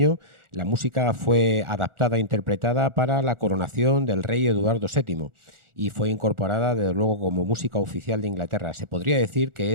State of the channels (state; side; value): late; left; 1.4 ms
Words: la música fue adaptada e interpretada para la coronación del rey Eduardo VII y fue incorporada, desde luego, como música oficial de Inglaterra. Se podría decir que